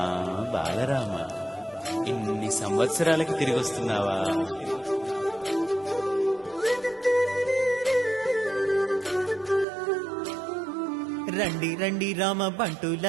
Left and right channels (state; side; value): drops out; left; at 9.7 s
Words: బాలరామ ఇన్ని సంవత్సరాలకి తిరిగి వస్తున్నావా? రండి రండి రామ